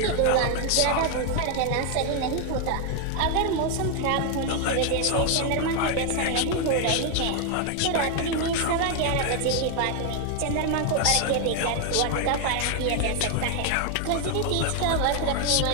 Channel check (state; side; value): different; both; correlation 0.01